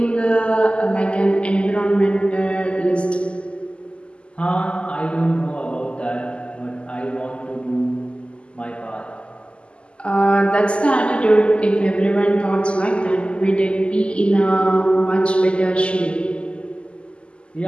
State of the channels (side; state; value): right; late; 0.053 ms